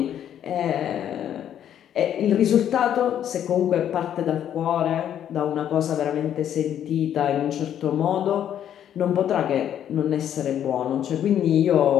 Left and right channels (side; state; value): right; quieter; 10.1 dB